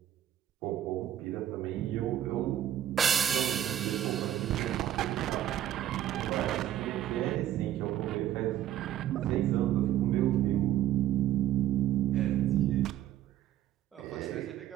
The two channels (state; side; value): quieter; left; 11.9 dB